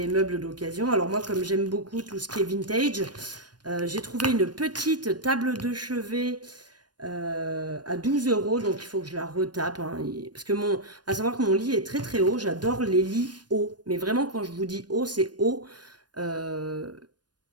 meubles d'occasion. Alors moi, comme j'aime beaucoup tout ce qui est vintage, j'ai trouvé une petite table de chevet à 12 euros. Donc, il faut que je la retape. Hein, parce que à savoir que mon lit est très très haut. J'adore les lits hauts. Mais vraiment, quand je vous dis haut, c'est haut. Euh,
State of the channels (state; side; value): late; left; 0.69 ms